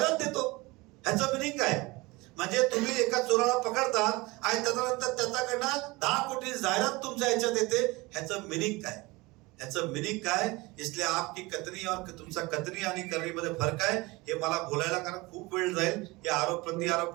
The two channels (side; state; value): left; quieter; 23.0 dB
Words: देतो. ह्याचं मिनिंग काय? म्हणजे तुम्ही एका चोराला पकडतात आणि त्याच्यानंतर त्याच्याकडनं 10 कोटी जाहिरात तुमच्या ह्याच्यात येते. ह्याचं मिनिंग काय? इसलिए आपकी कथनी और तुमचा कथनी आणि करणीमध्ये फरक आहे. हे मला बोलायला कारण खूप वेळ जाईल. हे आरोप प्रति आरोप